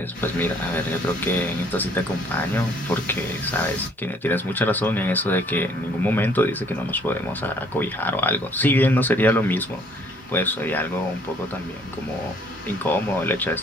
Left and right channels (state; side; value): normal; both; correlation 0.61